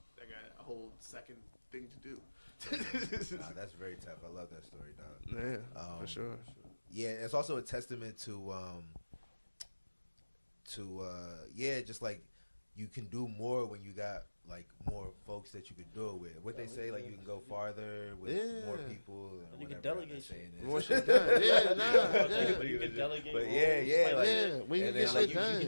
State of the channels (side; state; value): both; inverted; correlation -1.00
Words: got a whole second thing to do. That's very tough. I love that story, dog. Yeah, for sure. Yeah, it's also a testament to just like you can do more when you got like more folks that you could do it with. What they say, like you can go farther with more people. And you can delegate more shit done. Yeah, You can delegate. But when you get shit done, you can